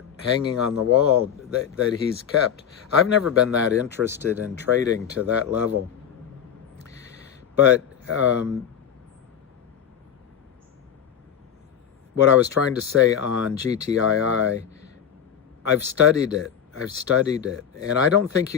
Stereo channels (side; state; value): right; quieter; 8.6 dB